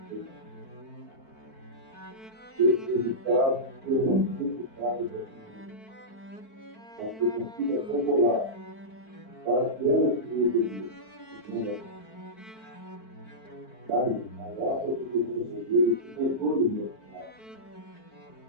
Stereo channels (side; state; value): right; late; 4.5 ms